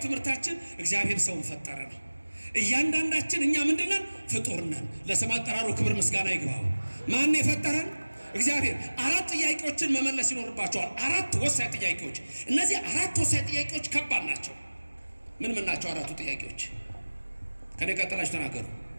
ትምህርታችን እግዚአብሔር ሰውን ፈጠረ ነው። እያንዳንዳችን እኛ ምንድነን? ፍጡር ነን። ለስም አጠራሩ ክብር ምስጋና ይግባው። ማን የፈጠረን? እግዚአብሔር። 4 ጥያቄዎችን መመለስ ይኖርባቸዋል። 4 ወሳኝ ጥያቄዎች። እነዚህ 4 ወሳኝ ጥያቄዎች ከባድ ናቸው። ምን ናቸው 4ቱ ጥያቄዎች? ከኔ ቀጥላችሁ ተናገሩ።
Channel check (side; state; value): both; inverted; correlation -1.00